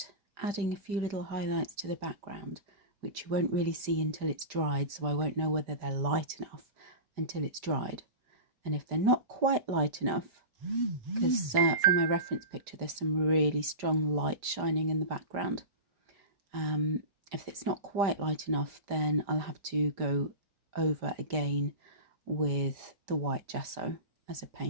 adding a few little highlights to the background, which you won't really see until it's dried, so I won't know whether they're light enough until it's dried. And if they're not quite light enough, because from my reference picture there's some really strong light shining in the background. If it's not quite light enough, then I'll have to go over again with the white gesso as a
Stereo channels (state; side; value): late; left; 5.0 ms